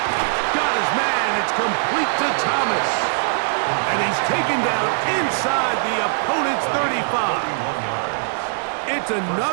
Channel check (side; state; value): left; silent; 65 dB below the other